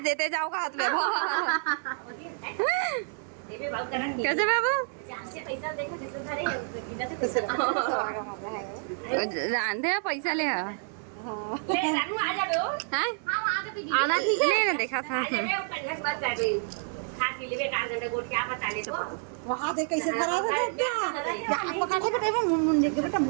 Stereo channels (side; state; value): left; silent; 59 dB below the other